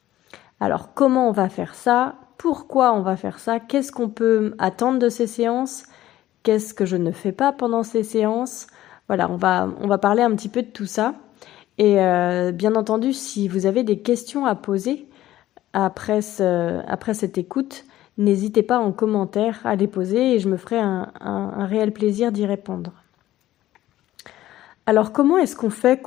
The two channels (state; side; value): quieter; right; 14.3 dB